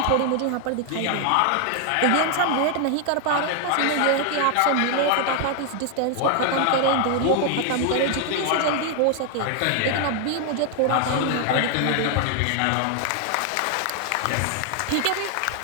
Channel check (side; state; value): both; different; correlation 0.00